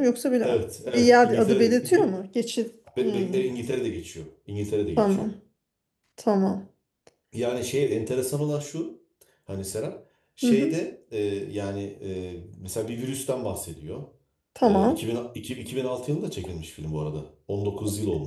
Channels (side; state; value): both; identical; correlation 1.00